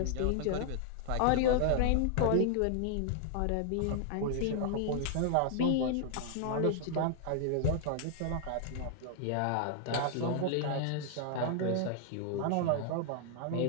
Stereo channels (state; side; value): different; both; correlation 0.00